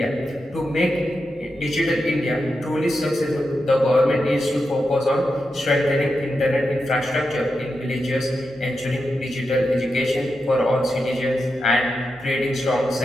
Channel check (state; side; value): normal; both; correlation 0.88